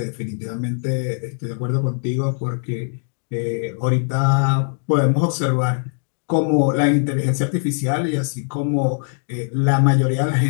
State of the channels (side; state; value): right; silent; 65 dB below the other